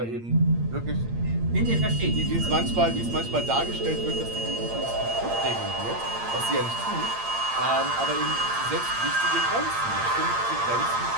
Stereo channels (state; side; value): late; left; 8.7 ms